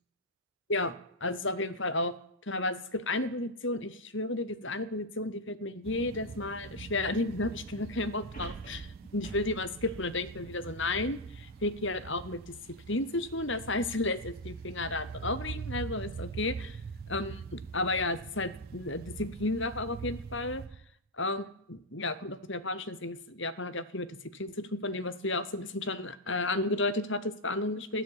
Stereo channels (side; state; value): both; normal; correlation 0.00